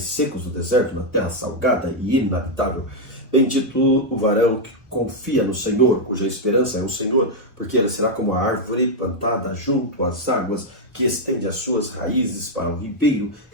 secos do deserto, na terra salgada e inabitável. Bendito o varão que confia no Senhor, cuja esperança é o Senhor, porque ele será como a árvore plantada junto às águas, que estende as suas raízes para o ribeiro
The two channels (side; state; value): both; normal; correlation -0.01